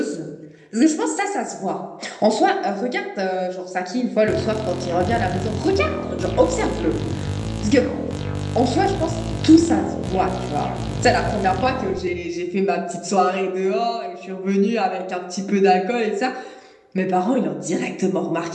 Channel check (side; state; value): both; identical; correlation 1.00